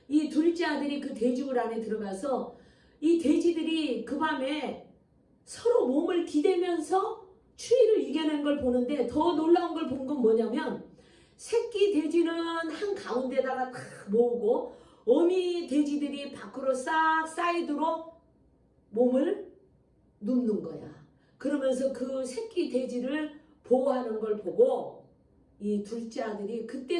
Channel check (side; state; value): both; identical; correlation 1.00